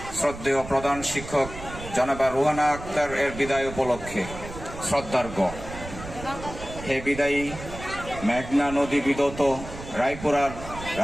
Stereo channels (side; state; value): right; noise; rumble, 12 dB below the sound